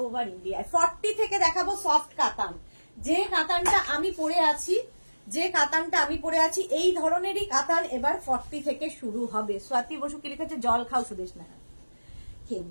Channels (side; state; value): both; inverted; correlation -1.00